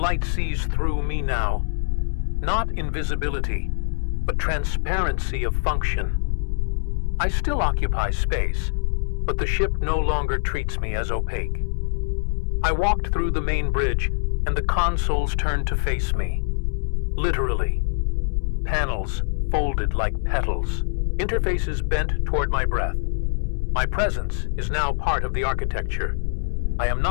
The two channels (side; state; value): right; silent; 60 dB below the other